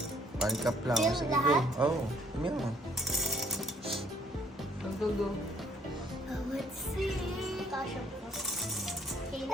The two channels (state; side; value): normal; both; correlation 0.64